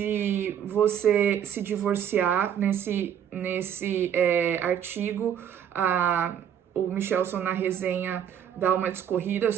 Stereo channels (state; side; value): quieter; left; 9.1 dB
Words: você se divorciar. Nesse artigo, o Michelson, na resenha, dá uma discorrida